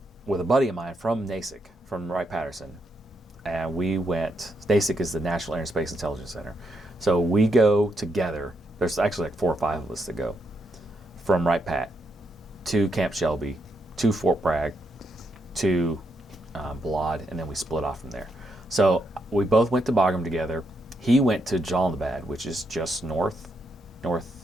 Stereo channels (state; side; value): normal; both; correlation 0.79